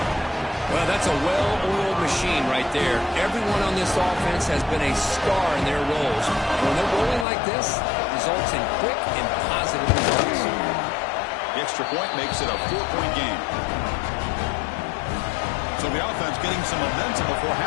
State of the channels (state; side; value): drops out; right; at 7.2 s